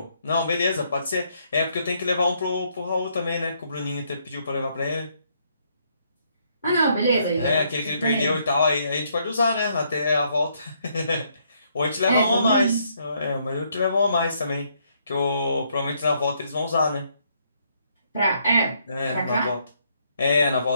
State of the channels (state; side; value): inverted; both; correlation -0.71